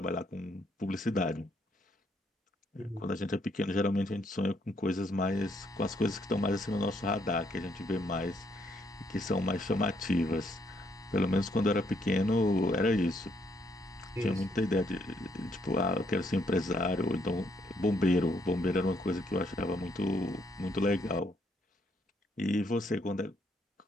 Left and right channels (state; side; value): normal; both; correlation 0.72